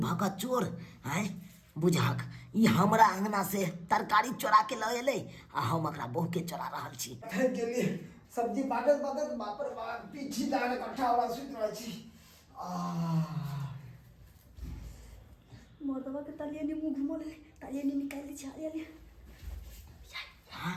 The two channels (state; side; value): identical; both; correlation 1.00